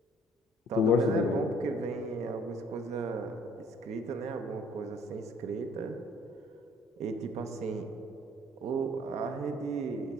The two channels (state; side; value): normal; both; correlation 0.58